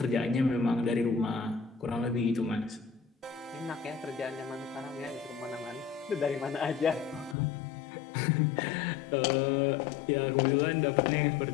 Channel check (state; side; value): drops out; right; at 7.4 s